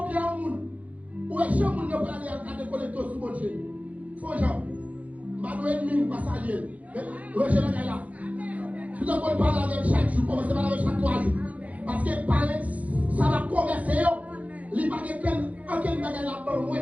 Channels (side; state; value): left; late; 0.070 ms